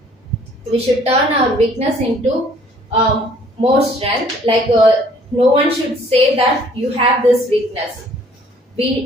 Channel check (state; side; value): normal; both; correlation 0.58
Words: We should turn our weakness into more strength. Like no one should say that you have this weakness.